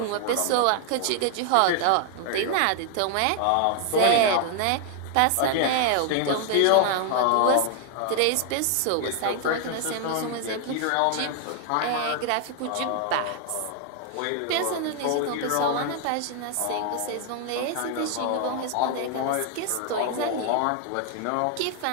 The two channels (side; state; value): both; different; correlation 0.00